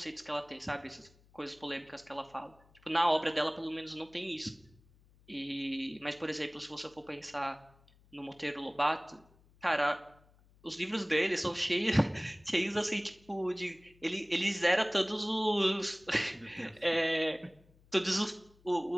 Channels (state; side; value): noise; left; hum, 29 dB below the sound